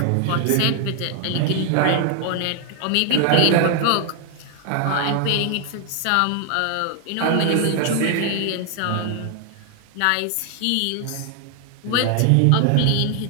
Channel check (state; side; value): different; both; correlation 0.00